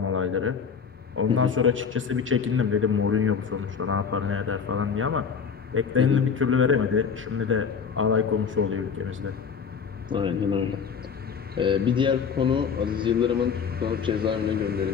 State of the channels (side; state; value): right; quieter; 6.4 dB